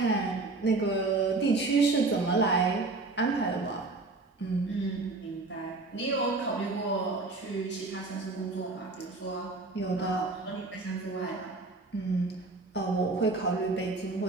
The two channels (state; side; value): quieter; left; 3.5 dB